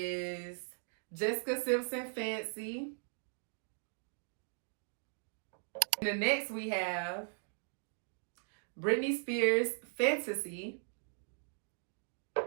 Jessica Simpson Fancy. And the next we have Britney Spears Fantasy.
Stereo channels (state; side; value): silent; left; digital silence